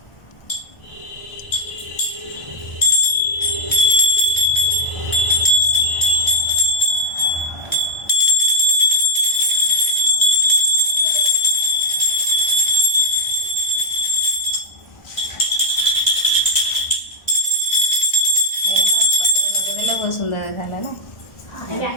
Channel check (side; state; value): right; late; 1.3 ms